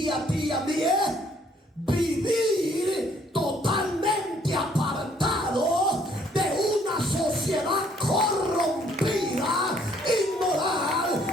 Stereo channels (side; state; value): both; normal; correlation 0.64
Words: a ti y a mí es vivir totalmente apartado de una sociedad corrompida, inmoral,